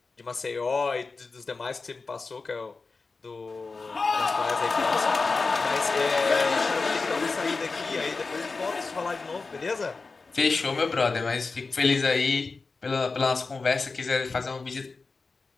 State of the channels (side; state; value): right; quieter; 4.1 dB